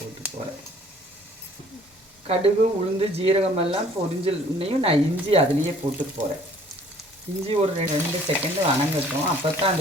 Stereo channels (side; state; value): both; normal; correlation 0.56